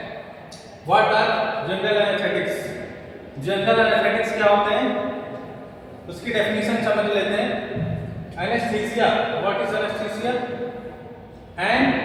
what are general anesthetics? General anaesthetics क्या होते हैं उसकी डेफिनेशन समझ लेते हैं. Anaesthesia, what is anaesthesia? An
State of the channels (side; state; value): both; identical; correlation 1.00